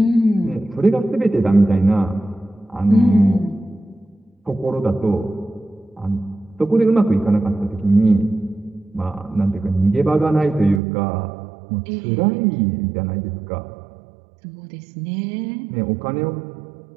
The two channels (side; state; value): left; drops out; at 10.8 s